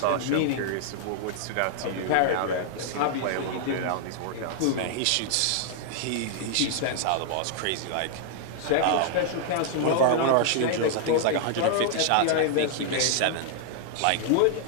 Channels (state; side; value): different; both; correlation -0.01